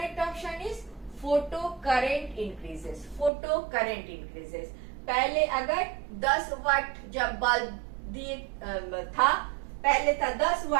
option is photo current increases. Photo current increases. पहले अगर 10 वाट जब बल्ब दिए था, पहले था 10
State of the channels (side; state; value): left; drops out; at 3.3 s